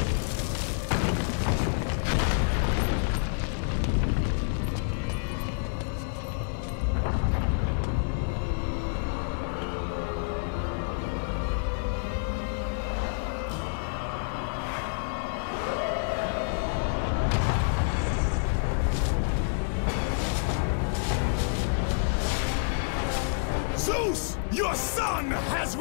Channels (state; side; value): silent; right; 59 dB below the other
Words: Zeus, your son has